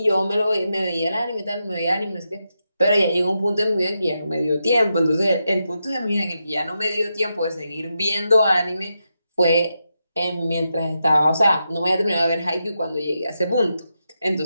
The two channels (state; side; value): inverted; both; correlation -0.86